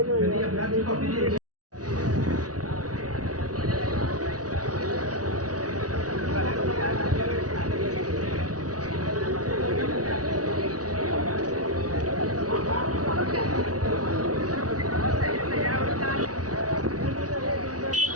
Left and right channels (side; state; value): left; late; 0.68 ms